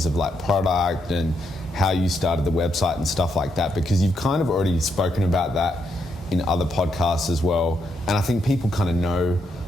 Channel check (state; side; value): normal; both; correlation 0.79